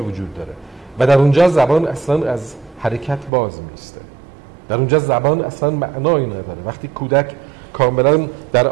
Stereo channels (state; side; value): drops out; left; at 3.3 s